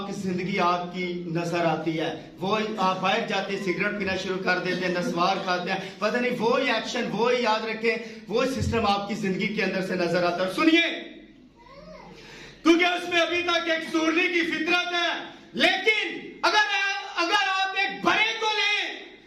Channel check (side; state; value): both; identical; correlation 1.00